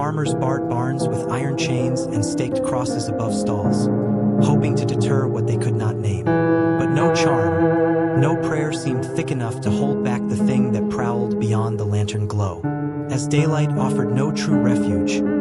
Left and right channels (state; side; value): identical; both; correlation 1.00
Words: barred barns with iron chains and staked crosses above stalls, hoping to deter what they could not name. But no charm, no prayer seemed thick enough to hold back the thing that prowled daylight offered no true refuge,